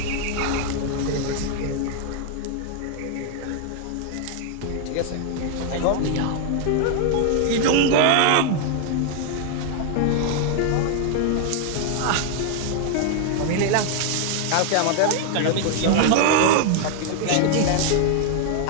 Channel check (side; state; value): both; different; correlation 0.00